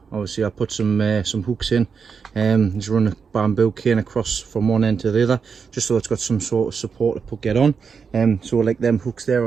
Obviously I put some hooks in, just run a bamboo cane across from one end to the other, just so it's got some sort of support to get on. So like them hooks there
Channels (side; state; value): left; quieter; 5.9 dB